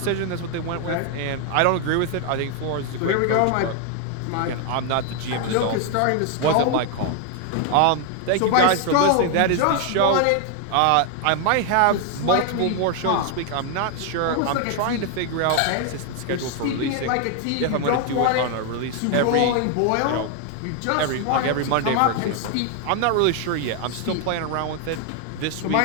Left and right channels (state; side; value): different; both; correlation 0.00